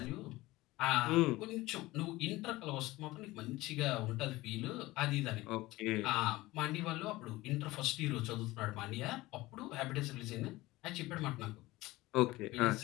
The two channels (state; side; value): quieter; right; 19.1 dB